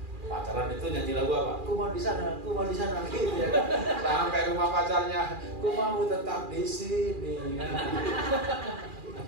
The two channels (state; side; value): late; left; 2.4 ms